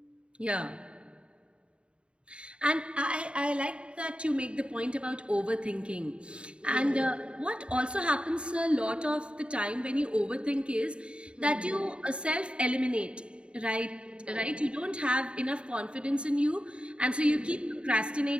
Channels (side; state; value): left; late; 0.056 ms